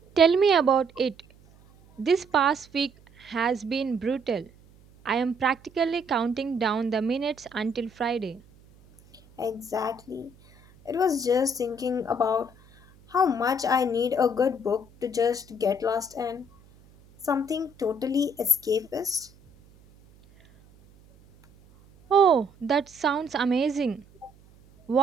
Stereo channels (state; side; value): noise; right; hum, 27 dB below the sound